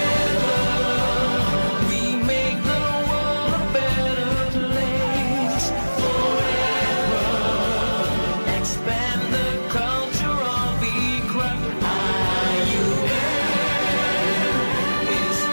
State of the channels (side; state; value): both; inverted; correlation -1.00